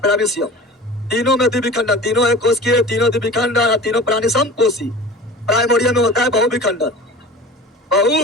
तीनों में द्विविखंडन, तीनों एक कोश के, तीनों द्विविखंडन, तीनों प्राणी समकोशी। प्राइमोरिया में होता है बहुविखंडन,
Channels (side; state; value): both; normal; correlation 0.38